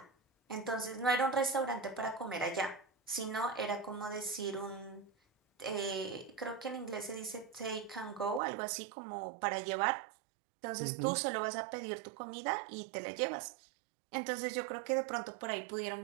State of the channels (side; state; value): left; drops out; at 8.4 s